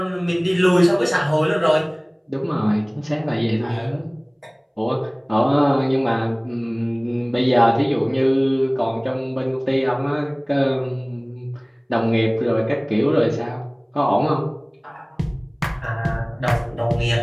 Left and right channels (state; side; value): identical; both; correlation 1.00